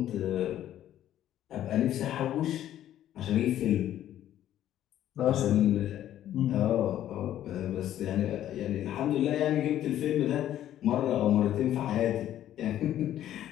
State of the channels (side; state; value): right; quieter; 12.0 dB